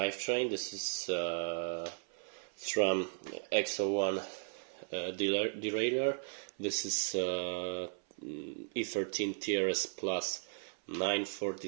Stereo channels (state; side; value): silent; left; 54 dB below the other